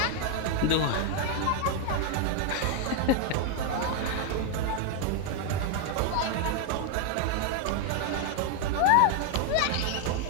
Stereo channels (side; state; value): both; different; correlation 0.01